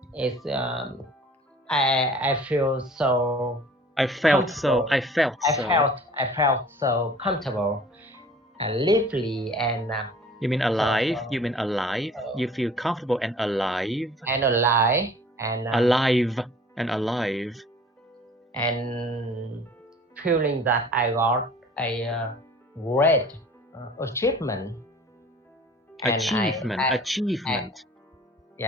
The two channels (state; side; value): normal; both; correlation 0.48